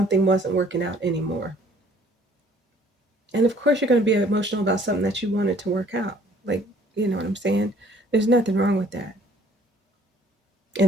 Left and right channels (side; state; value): both; normal; correlation 0.57